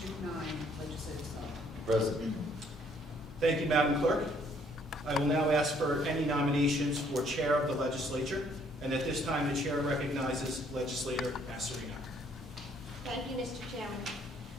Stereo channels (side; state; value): both; normal; correlation 0.64